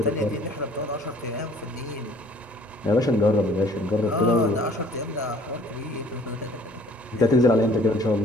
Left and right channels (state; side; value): normal; both; correlation 0.55